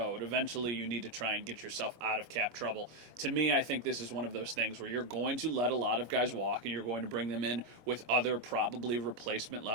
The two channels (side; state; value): left; late; 25 ms